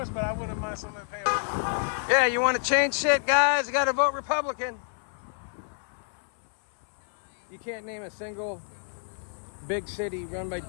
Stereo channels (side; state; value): right; silent; 59 dB below the other